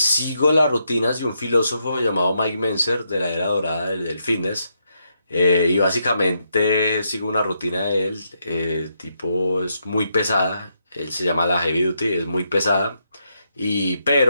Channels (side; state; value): both; inverted; correlation -0.80